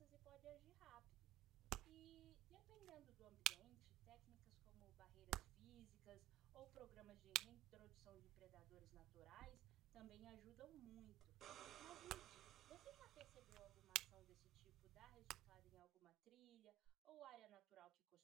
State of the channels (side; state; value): left; quieter; 14.9 dB